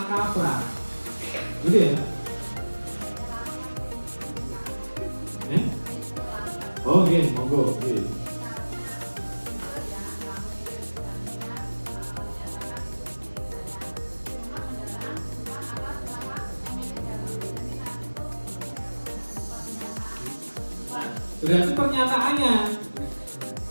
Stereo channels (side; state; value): both; inverted; correlation -1.00